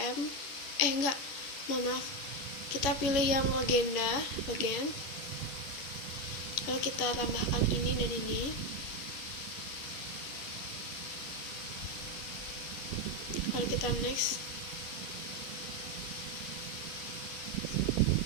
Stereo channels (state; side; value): late; right; 11 ms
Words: Maaf, kita pilih yang legend, lalu kita tambahkan ini dan ini. Lalu kita next.